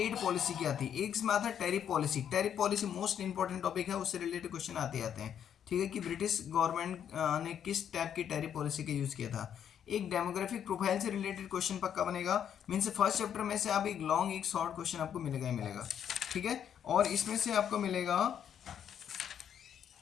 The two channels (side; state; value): right; quieter; 9.0 dB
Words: पॉलिसी क्या थी। एक इसमें आता है tariff policy. Tariff policy most important topic है, उससे रिलेटेड क्वेश्चन आते हैं। ठीक है, कि ब्रिटिश गवर्नमेंट ने किस टाइप की टैरिफ पॉलिसी का यूज़ किया था। एक डेमोग्राफिक प्रोफाइल से रिलेटेड क्वेश्चन पक्का बनेगा। मीन्स फर्स्ट चैप्टर में से आप एक लॉन्ग एक शॉर्ट क्वेश्चन आपको मिलेगा ही मिलेगा। ठीक है, और इसमें से आपको मिलेगा